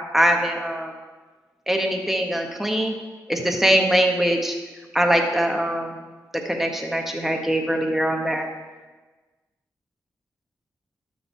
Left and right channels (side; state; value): both; normal; correlation 0.85